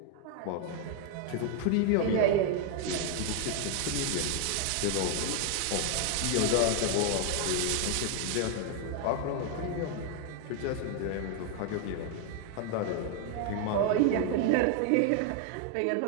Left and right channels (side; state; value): both; different; correlation 0.00